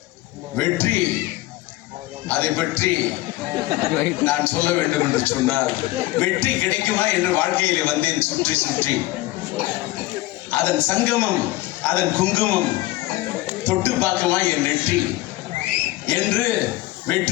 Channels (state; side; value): quieter; right; 18.1 dB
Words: வெற்றி அதை பற்றி நான் சொல்ல வேண்டும் என்று சொன்னால், வெற்றி கிடைக்குமா என்று வாழ்க்கையிலே வந்தேன் சுற்றி சுற்றி. அதன் சங்கமம், அதன் குங்குமம் தொட்டு பார்க்குமா என் நெற்றி என்று